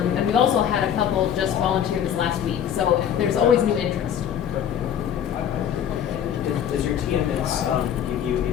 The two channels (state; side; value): quieter; right; 9.3 dB